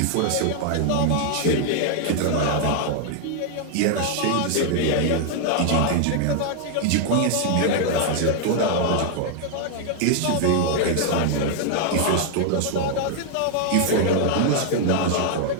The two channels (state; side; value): different; both; correlation 0.00